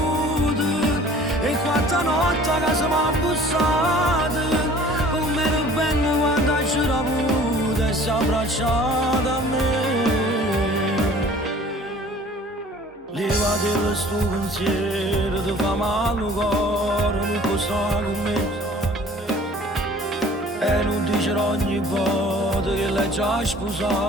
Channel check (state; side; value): normal; both; correlation 0.49